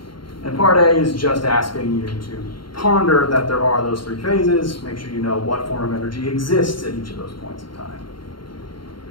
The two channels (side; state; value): right; late; 0.73 ms